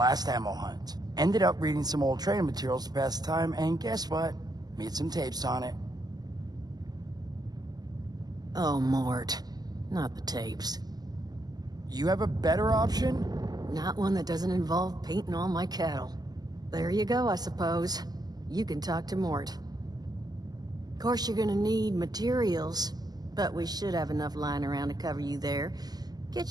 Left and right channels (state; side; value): late; left; 0.19 ms